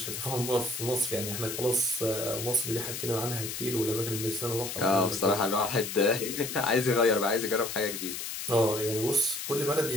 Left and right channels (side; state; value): left; noise; hiss, 6 dB below the sound